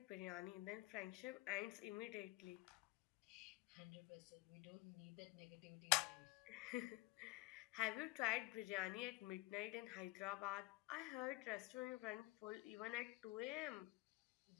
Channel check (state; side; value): quieter; right; 22.0 dB